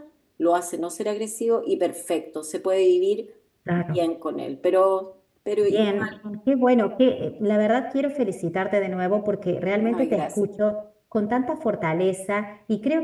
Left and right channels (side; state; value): both; identical; correlation 1.00